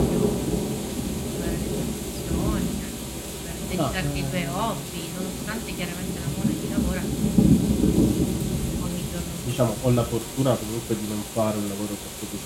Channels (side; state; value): both; identical; correlation 1.00